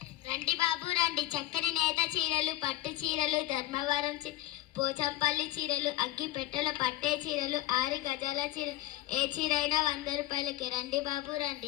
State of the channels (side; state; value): right; quieter; 15.6 dB